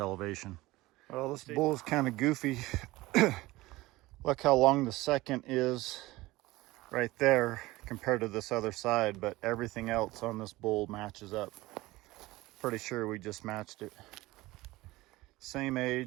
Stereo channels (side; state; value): left; quieter; 19.2 dB